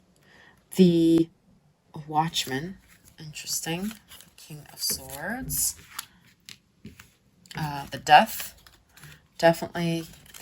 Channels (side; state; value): both; identical; correlation 1.00